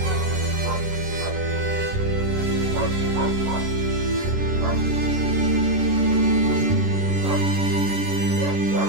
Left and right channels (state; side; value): late; left; 11 ms